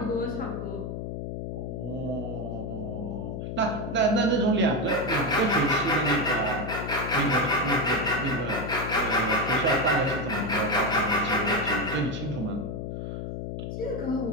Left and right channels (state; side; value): noise; left; hum, 5 dB below the sound